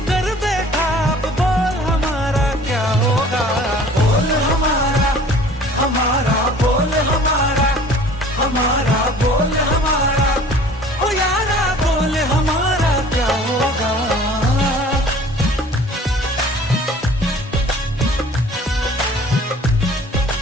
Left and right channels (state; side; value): normal; both; correlation 0.49